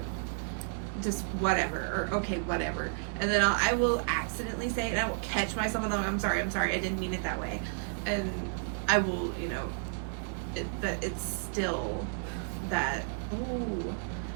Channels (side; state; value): left; silent; digital silence